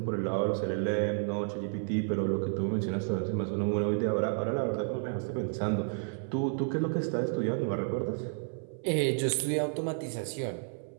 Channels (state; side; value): silent; left; 57 dB below the other